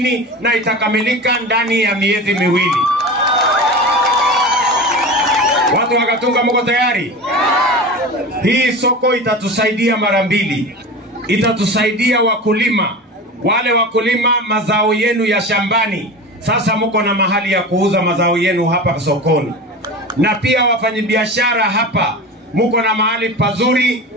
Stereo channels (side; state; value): both; normal; correlation 0.30